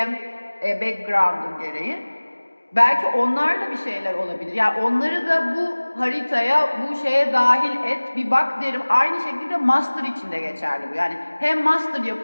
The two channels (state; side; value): inverted; both; correlation -1.00